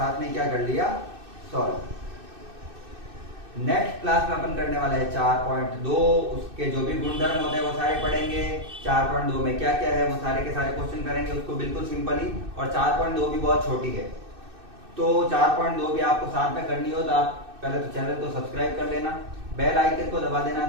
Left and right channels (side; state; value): left; late; 2.6 ms